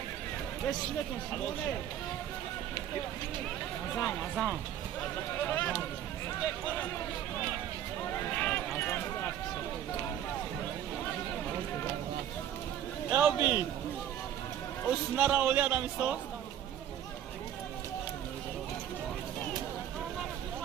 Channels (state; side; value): quieter; left; 10.6 dB